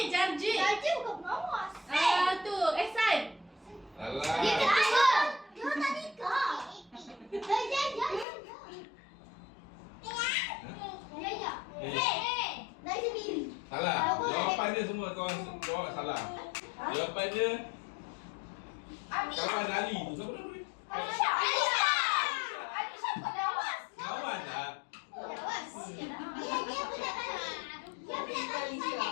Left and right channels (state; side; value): drops out; right; at 8.2 s